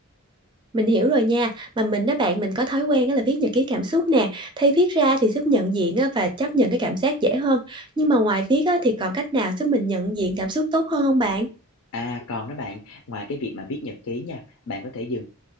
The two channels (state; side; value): normal; both; correlation 0.38